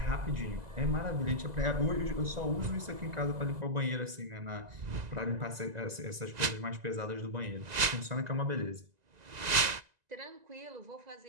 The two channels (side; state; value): left; late; 2.0 ms